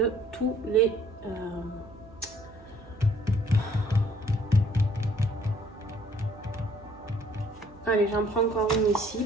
tous les... Allez, j'en prends encore une ici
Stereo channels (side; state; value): right; noise; hum, 22 dB below the sound